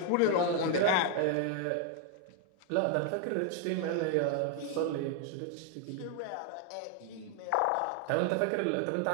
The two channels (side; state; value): both; different; correlation 0.00